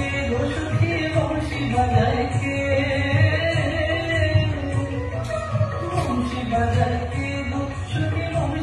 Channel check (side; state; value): both; identical; correlation 1.00